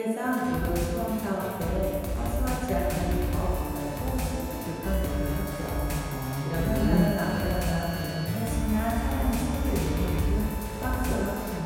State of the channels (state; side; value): identical; both; correlation 1.00